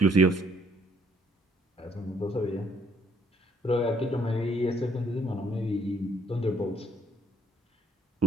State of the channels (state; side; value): normal; both; correlation 0.65